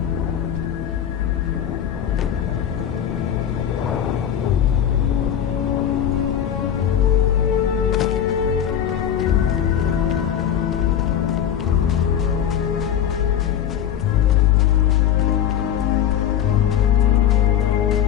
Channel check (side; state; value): right; quieter; 9.8 dB